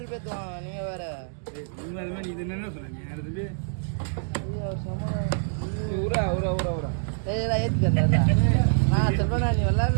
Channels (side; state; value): left; silent; digital silence